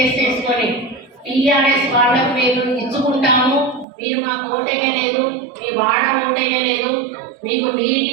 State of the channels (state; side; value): drops out; left; at 3.9 s